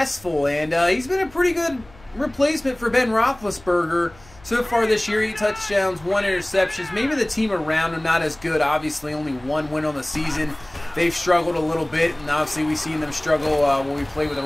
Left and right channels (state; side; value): noise; left; hum, 25 dB below the sound